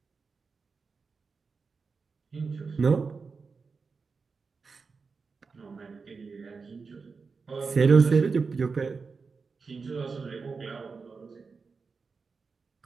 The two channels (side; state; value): left; quieter; 4.8 dB